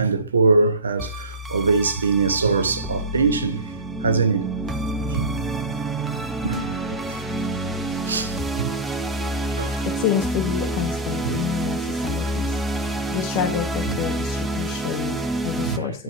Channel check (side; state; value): both; normal; correlation -0.12